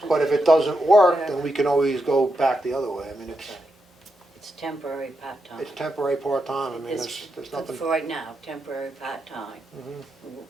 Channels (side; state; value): both; normal; correlation 0.85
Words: but if it doesn't work, then we can always go back the other way. I mean, It's temporary part-time. it's temporary part-time, I mean, It's there's for nothing. right now, temporary part-time. Mhm.